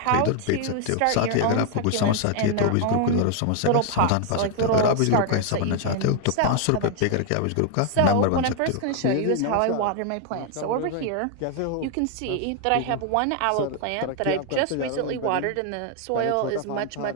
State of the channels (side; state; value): both; different; correlation 0.00